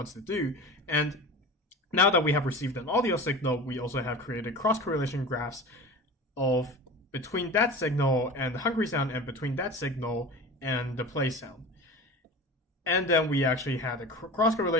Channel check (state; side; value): normal; both; correlation 0.33